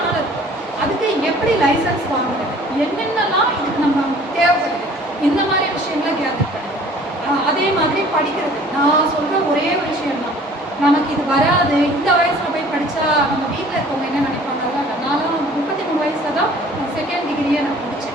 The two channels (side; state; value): both; normal; correlation 0.51